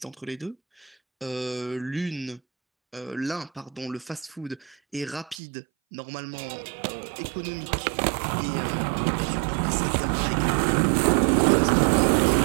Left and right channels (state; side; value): drops out; left; at 5.4 s